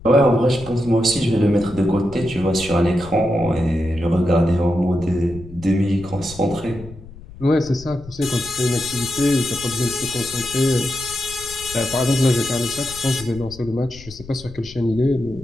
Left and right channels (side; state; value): left; noise; rumble, 17 dB below the sound